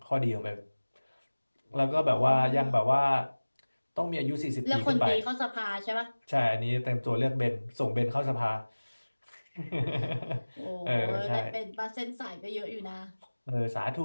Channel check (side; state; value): both; inverted; correlation -1.00